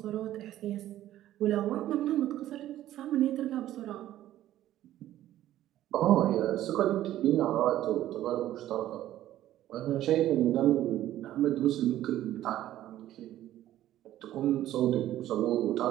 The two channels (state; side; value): quieter; left; 13.3 dB